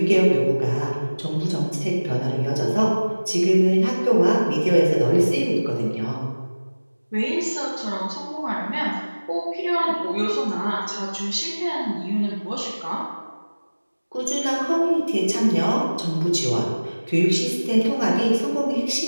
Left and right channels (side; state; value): both; inverted; correlation -1.00